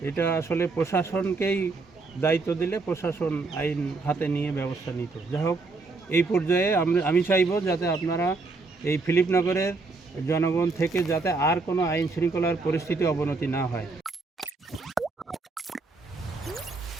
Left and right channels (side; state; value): left; quieter; 3.8 dB